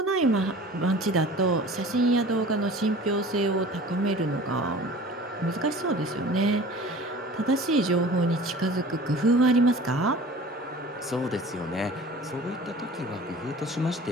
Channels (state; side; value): normal; both; correlation 0.43